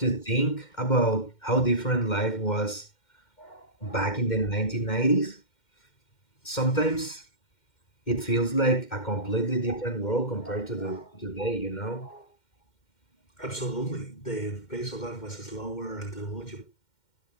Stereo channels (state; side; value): late; right; 2.1 ms